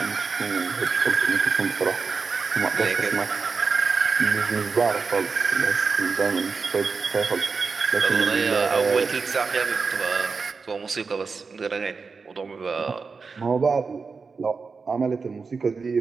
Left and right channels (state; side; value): quieter; left; 4.8 dB